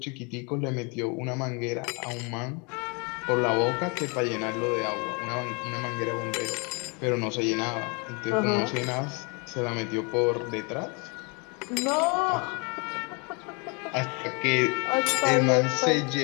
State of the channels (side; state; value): right; quieter; 32.7 dB